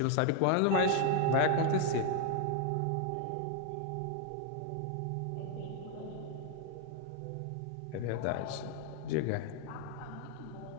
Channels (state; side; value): different; both; correlation 0.00